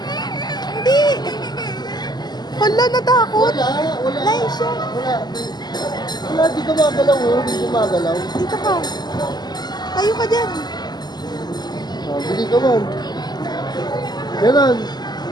Hindi. Hala, natakot. Wala. Laisha. Wala, di ka magalaw, oh. Di ka magalaw. Dito ka. Tayo ka dyan. Bili ka man. Ganon.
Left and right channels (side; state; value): right; late; 0.20 ms